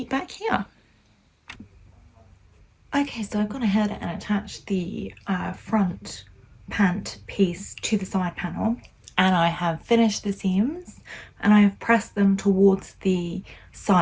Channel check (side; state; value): both; identical; correlation 1.00